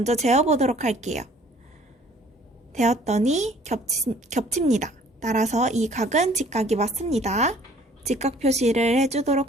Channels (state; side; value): normal; both; correlation 0.55